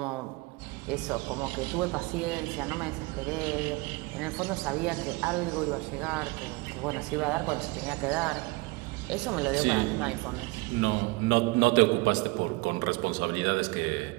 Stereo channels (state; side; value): quieter; left; 24.6 dB